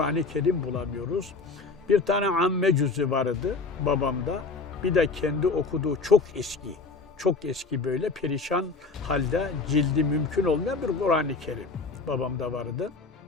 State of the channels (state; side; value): quieter; right; 4.1 dB